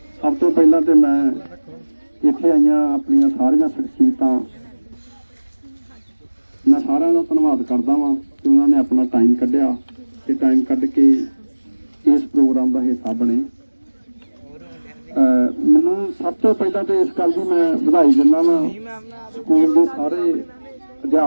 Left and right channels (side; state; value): both; inverted; correlation -1.00